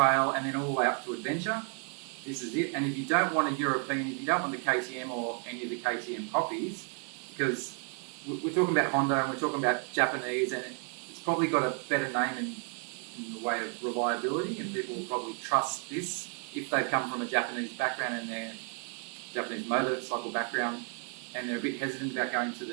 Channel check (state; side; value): quieter; left; 39.0 dB